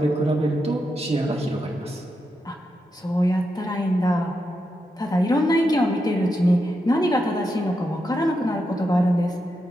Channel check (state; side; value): normal; both; correlation 0.85